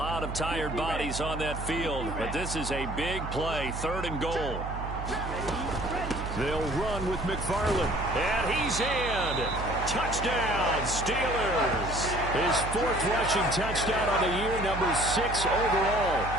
of tired bodies on that field, but this is a big play, 3rd and goal. They'll run with McFarland. And he's in. Touchdown, Steelers. His 4th rushing touchdown on the year, number 6 overall.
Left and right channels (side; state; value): right; noise; hum, 6 dB below the sound